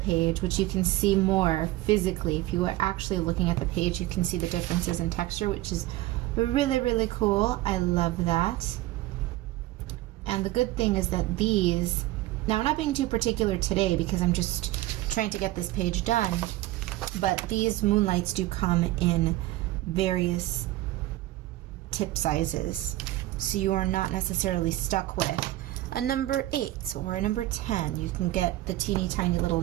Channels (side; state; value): left; quieter; 16.8 dB